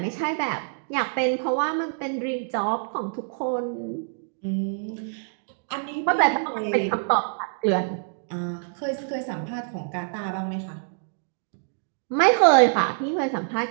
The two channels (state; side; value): silent; left; digital silence